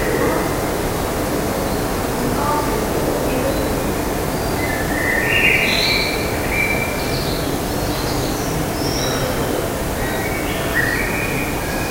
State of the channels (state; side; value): identical; both; correlation 1.00